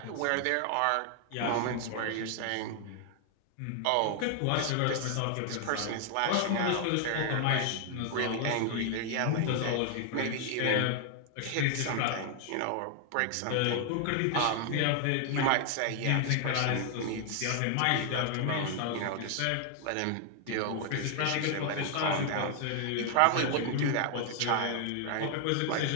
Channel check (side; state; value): both; different; correlation 0.00